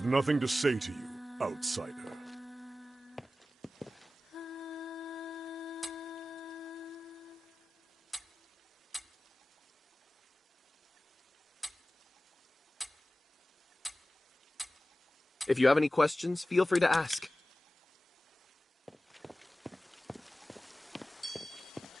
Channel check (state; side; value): normal; both; correlation 0.96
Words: nothing to say to you, outsider. If you have any questions, feel free to ask.